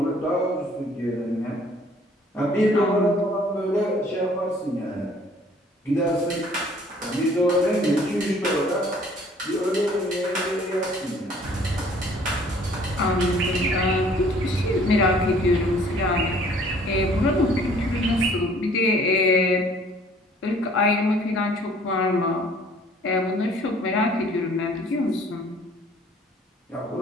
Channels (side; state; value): both; normal; correlation 0.56